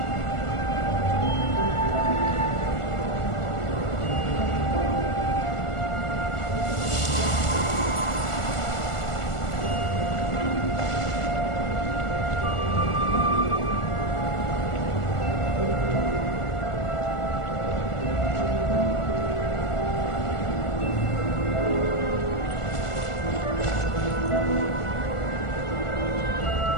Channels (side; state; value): right; late; 1.4 ms